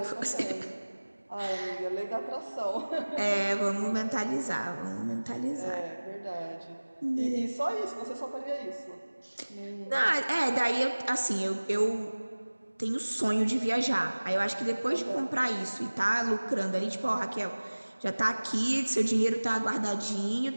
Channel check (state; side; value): inverted; both; correlation -1.00